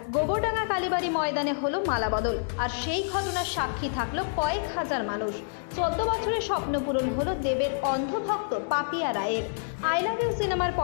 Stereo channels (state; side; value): silent; right; 58 dB below the other